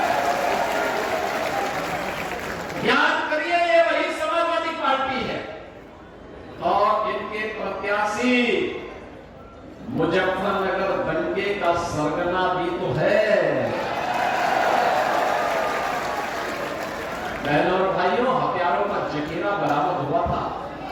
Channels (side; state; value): both; identical; correlation 1.00